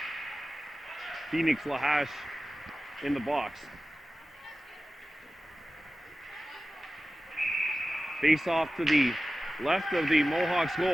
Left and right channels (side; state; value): both; normal; correlation 0.96